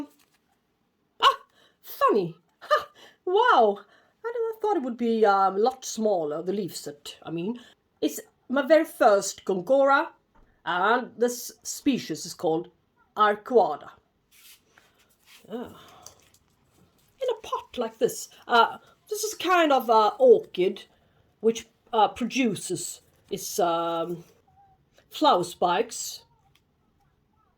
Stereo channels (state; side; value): identical; both; correlation 1.00